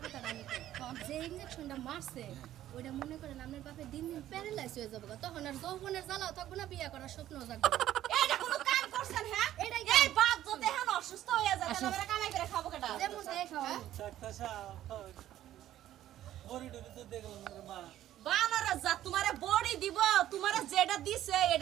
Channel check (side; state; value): left; quieter; 12.8 dB